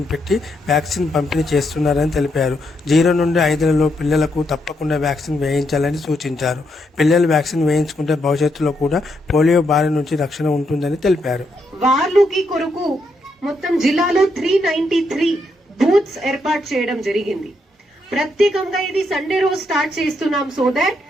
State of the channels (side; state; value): both; normal; correlation 0.79